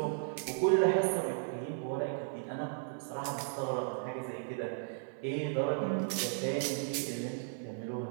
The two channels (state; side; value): silent; left; 54 dB below the other